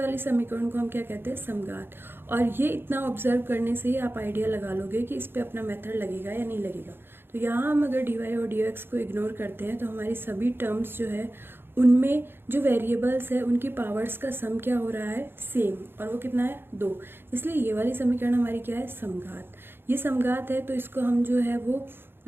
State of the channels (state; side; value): late; left; 0.10 ms